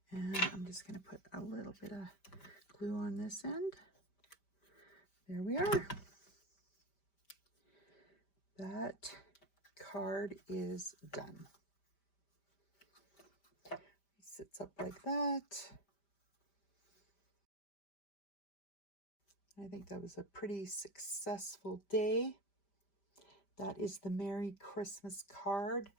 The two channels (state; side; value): late; right; 5.1 ms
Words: And I'm just going to put a little bit of glue on this end. There we are. That card is done. It sits up like that. I think that was a pretty successful day. That is the Merry Christmas card